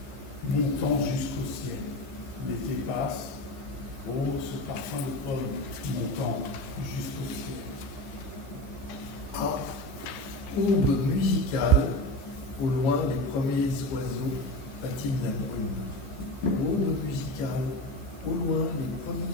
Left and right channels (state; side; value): late; right; 15 ms